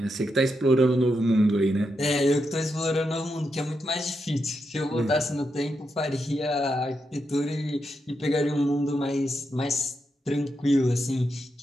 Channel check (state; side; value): normal; both; correlation 0.84